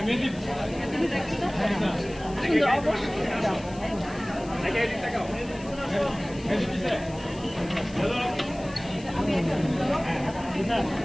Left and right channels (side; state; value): left; noise; hiss, 21 dB below the sound